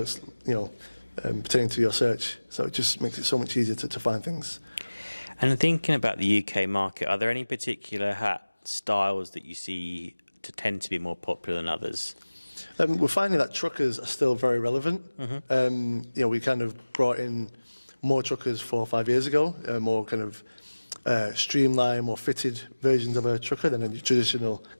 pertaining to your search. So it just makes it so much easier to find things. And thinking about the UK market, are there any particular hat styles that you see to tend to be more popular than others? We're finding that truckers are still very relevant. We kind of brought in more truckers 4 or 5 years ago, more kind of streamlined, more fitted versions of a trucker than a traditional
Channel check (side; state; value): both; inverted; correlation -1.00